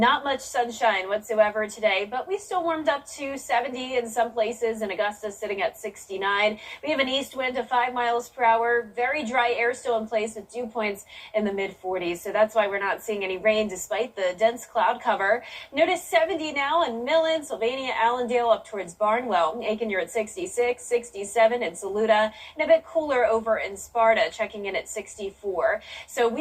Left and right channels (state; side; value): identical; both; correlation 1.00